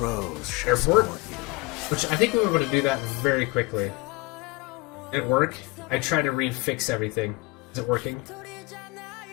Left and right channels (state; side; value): quieter; right; 24.0 dB